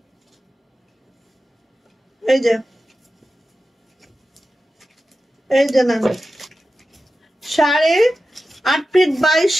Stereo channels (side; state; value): both; normal; correlation 0.93